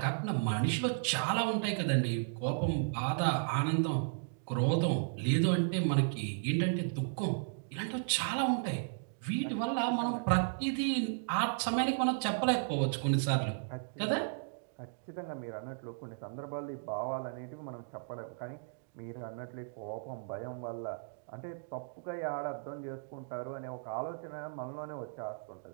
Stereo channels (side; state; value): left; silent; digital silence